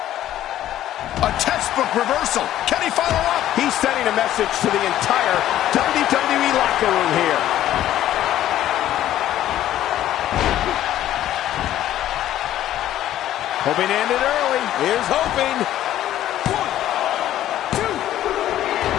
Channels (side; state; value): right; quieter; 12.7 dB